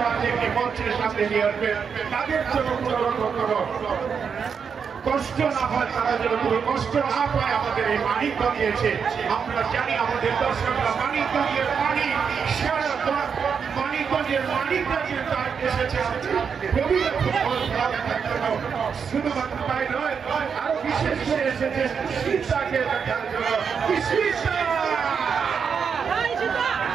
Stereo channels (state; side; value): quieter; left; 6.5 dB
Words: মঞ্চের সামনে নিয়ে আসবেন। তাদের জন্য কোনো রকম কষ্ট না হয়, তারা যেন কোনো কষ্ট না পায়। আমাদের এই মানিক দিয়েছে, আমরা জানি আমাদের দর্শকরা মানিকগঞ্জের পানি সারা মানিকগঞ্জের মানিকরা যে তার এসেছে প্রবীণা ফুটবল খেলা দেখার জন্য, শুধুমাত্র তাই নয় আরো বিশেষ করে এসেছে শীতাকে দেখার জন্য।